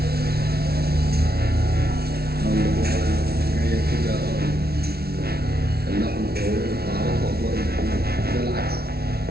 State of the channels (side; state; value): left; late; 0.45 ms